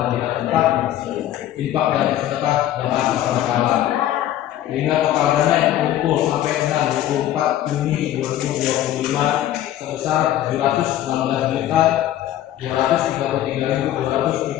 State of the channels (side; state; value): right; quieter; 12.6 dB